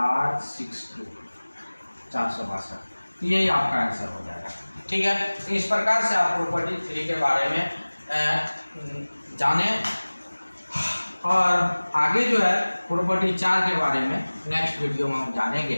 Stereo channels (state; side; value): inverted; both; correlation -1.00